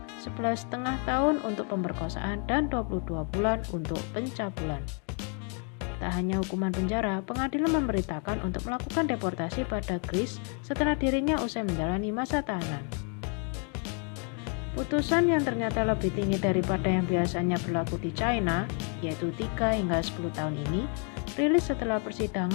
11,5 tahun untuk pemerkosaan dan 22 bulan untuk pencabulan. Tak hanya hukuman penjara, pengadilan memberitakan untuk melakukan deportasi pada Kris setelah dirinya usai menjalani masa tahanan. Putusan yang ternyata lebih tinggi daripada yang biasanya berlaku di China, yaitu 3 hingga 10 tahun ini, rilis setelah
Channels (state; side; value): quieter; right; 39.2 dB